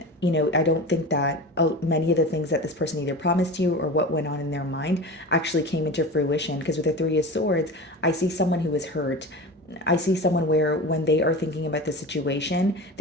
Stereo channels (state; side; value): normal; both; correlation 0.31